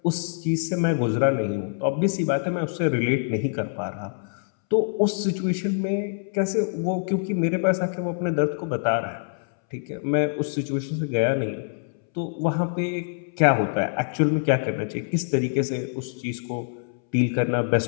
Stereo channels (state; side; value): silent; right; 62 dB below the other